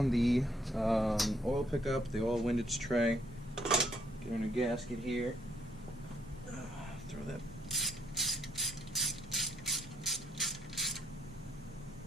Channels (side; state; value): both; normal; correlation 0.71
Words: the oil pickup, the oil windage tray, get in a gasket here, throw that.